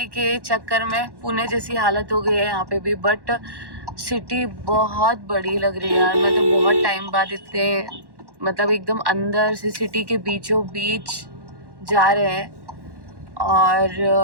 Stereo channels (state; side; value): late; left; 1.1 ms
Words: के चक्कर में पुणे जैसी हालत हो गई है यहाँ पे भी। बट सिटी बहुत बड़ी लग रही है यार। मैं तो बहुत टाइम बाद इतने, मतलब एकदम अंदर से सिटी के बीचों बीच जा रहे हैं, और